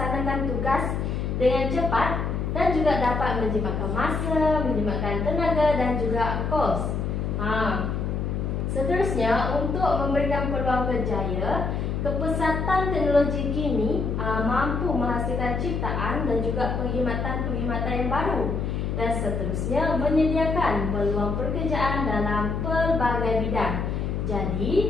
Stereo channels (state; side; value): noise; left; hum, 1 dB below the sound